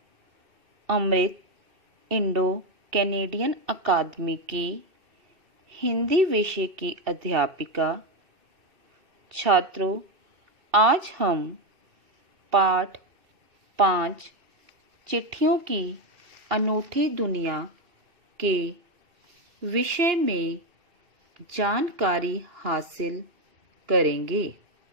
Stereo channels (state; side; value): late; left; 2.6 ms